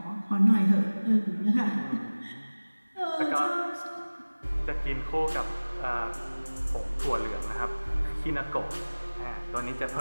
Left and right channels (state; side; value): inverted; both; correlation -1.00